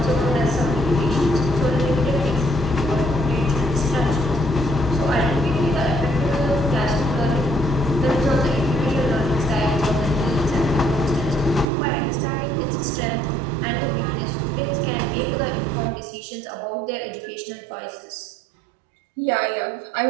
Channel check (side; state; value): left; drops out; at 11.7 s